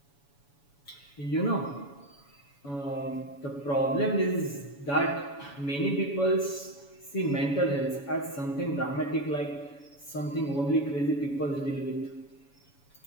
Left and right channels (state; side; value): late; right; 7.1 ms